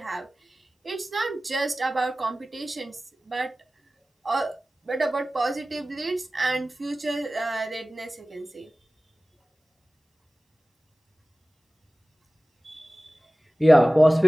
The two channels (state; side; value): normal; both; correlation 0.97